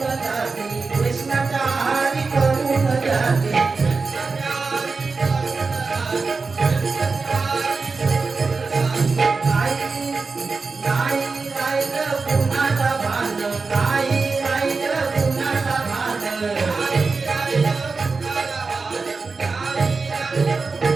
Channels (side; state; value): left; quieter; 4.3 dB